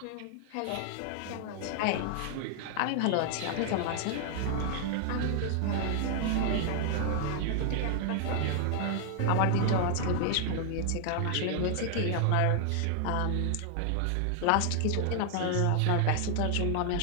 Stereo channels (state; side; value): different; both; correlation 0.00